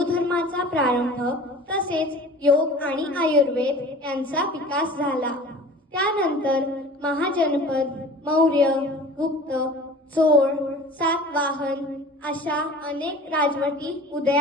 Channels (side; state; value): both; normal; correlation 0.42